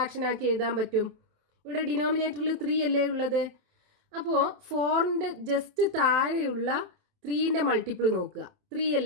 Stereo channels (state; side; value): late; left; 27 ms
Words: ആക്കി എഴുതാൻ പറ്റും? ഇവിടെ ഡിനോമിനേറ്ററിൽ 3 അല്ലേ ഉള്ളത്. അപ്പോൾ 4ൻ്റെ ജസ്റ്റ് താഴെയുള്ള 3ൻ്റെ മൾട്ടിപ്പിൾ നോക്കുക. 3